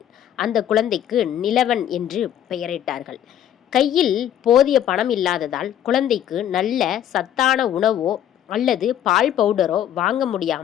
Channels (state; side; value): quieter; right; 10.7 dB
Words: அந்த குழந்தைக்கு நிலவன் என்று பெயரிட்டார்கள். கையில் போதிய பணம் இல்லாததால் குழந்தைக்கு நல்ல சத்தான உணவோ அல்லது பால் பவுடரோ வாங்க